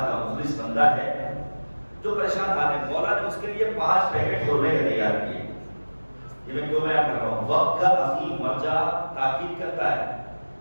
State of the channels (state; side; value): inverted; both; correlation -1.00